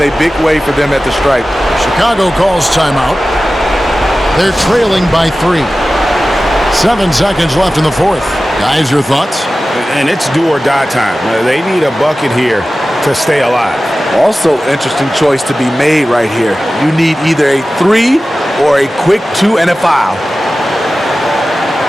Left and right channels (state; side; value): normal; both; correlation 0.95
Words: big way for them at the stripe. Chicago calls timeout. They're trailing by 3. 7 seconds left in the fourth. Guys, your thoughts? And it's do or die time. They need a bucket here to stay alive. Also, interesting choice to be made right here. You need either a 3 or a quick 2 and a foul.